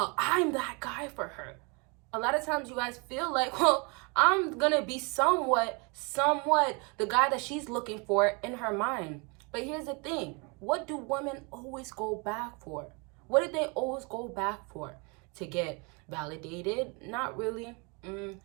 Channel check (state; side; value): quieter; left; 31.4 dB